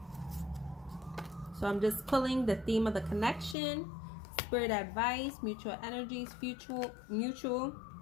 So I'm just pulling the theme of the connection, spirit advice, mutual energies, mutual.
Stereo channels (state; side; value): drops out; right; at 3.6 s